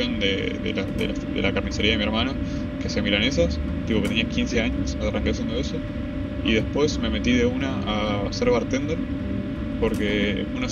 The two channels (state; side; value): identical; both; correlation 1.00